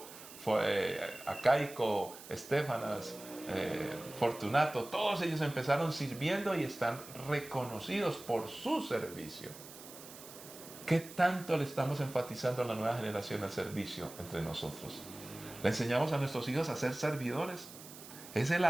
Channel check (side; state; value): right; noise; hiss, 16 dB below the sound